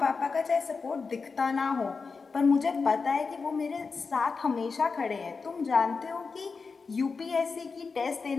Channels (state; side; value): quieter; right; 4.7 dB